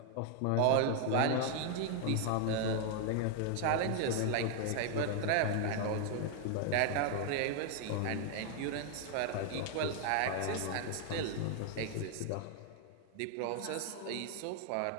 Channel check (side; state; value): both; different; correlation 0.00